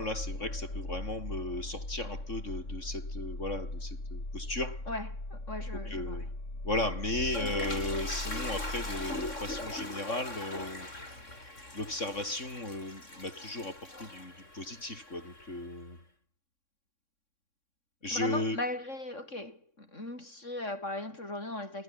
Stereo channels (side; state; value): right; late; 3.6 ms